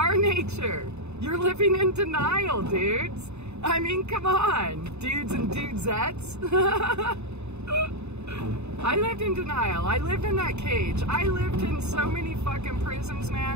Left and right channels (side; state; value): left; late; 0.81 ms